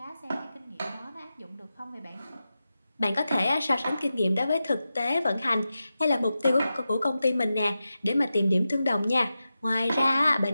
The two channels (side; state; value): both; inverted; correlation -0.92